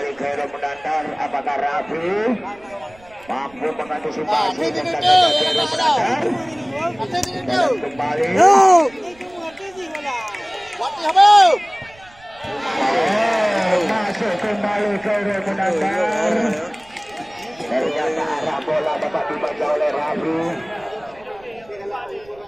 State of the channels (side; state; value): right; noise; rumble, 27 dB below the sound